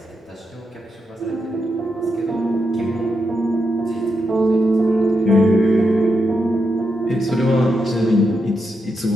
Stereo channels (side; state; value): both; normal; correlation 0.84